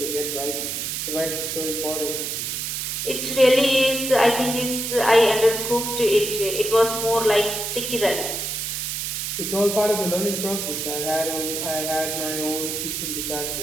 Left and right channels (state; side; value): noise; right; hiss, 3 dB below the sound